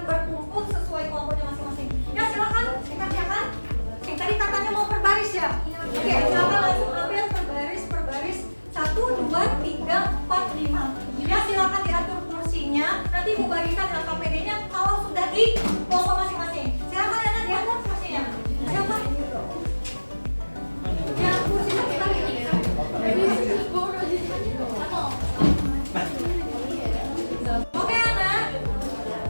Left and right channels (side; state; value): both; inverted; correlation -1.00